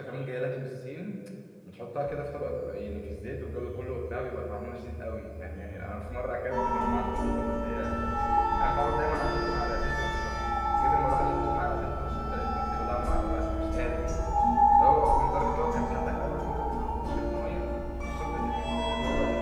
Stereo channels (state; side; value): identical; both; correlation 1.00